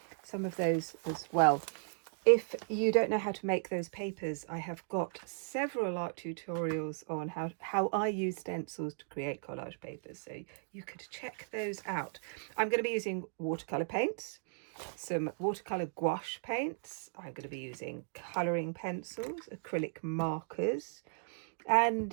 some of those as well. If you don't know how to make those papers, I have got several art tutorials on how I use stencils to create collage papers, so you could check those out. I'm going to be using watercolour paints, some watercolour gouache paints. I'm going to be using colouring pencils, acrylic markers,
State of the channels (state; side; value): silent; left; digital silence